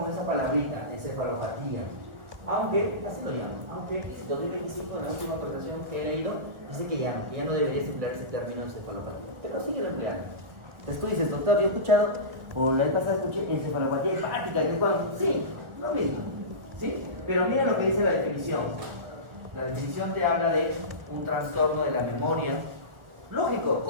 esa palabrita, encefalopatía. Aunque, así lo llamo, aunque en 2025, en la última actualización que he leído, dice que ya no debería emplear ese término encefalopatía, pero sigue empleando. Entonces tú dices, doctor, yo he escuchado, o la vez pasada escuché encefalopatía hepática, que es cuando, sí, lo mismo, ¿sí? Pero mira lo que dice la definición. La definición te habla de un trastorno de la memoria, lógico,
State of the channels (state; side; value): late; left; 1.4 ms